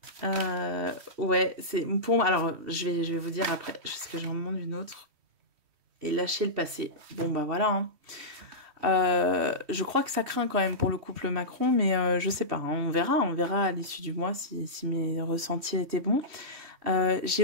Ouais, c'est pour moi. Alors, je vais vous dire après, parce que j'en demande une autre. Et lâcher le passé. Bon, bah voilà. Hein. Je crois que ça craint quand même pour le couple Macron, mais je sais pas. Hein, on verra à l'issue du mois si mes ressentis étaient bons. J'ai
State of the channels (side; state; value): left; late; 3.1 ms